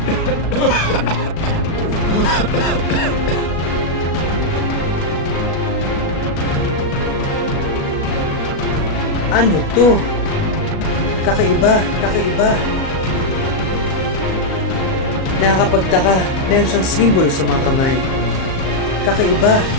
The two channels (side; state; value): right; late; 37 ms